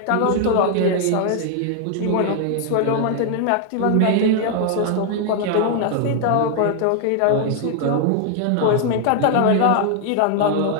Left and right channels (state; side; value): different; both; correlation 0.00